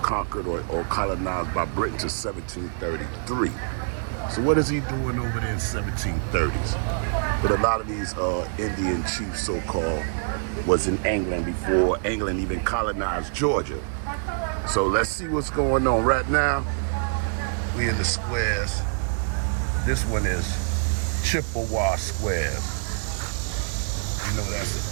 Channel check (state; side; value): silent; left; digital silence